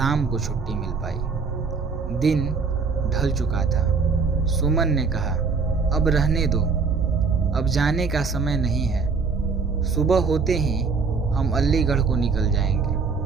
को छुट्टी मिल पाई। दिन ढल चुका था। सुमन ने कहा, अब रहने दो, अब जाने का समय नहीं है। सुबह होते ही हम अलीगढ़ को निकल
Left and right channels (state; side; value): quieter; left; 4.9 dB